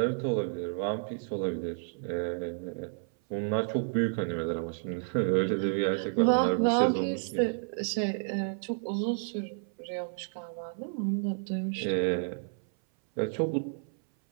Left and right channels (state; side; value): silent; left; 57 dB below the other